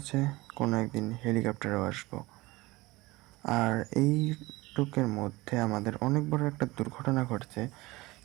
কোনো একদিন হেলিকপ্টারেও আসবো। আর এই টুকের মধ্যে আমাদের অনেক বড় একটা দুর্ঘটনা ঘটছে,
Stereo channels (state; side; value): quieter; left; 20.9 dB